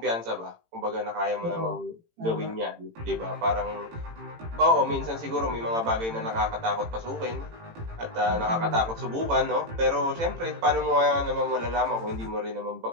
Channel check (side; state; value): left; late; 18 ms